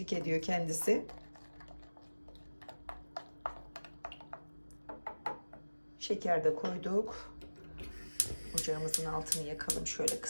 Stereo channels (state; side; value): inverted; both; correlation -1.00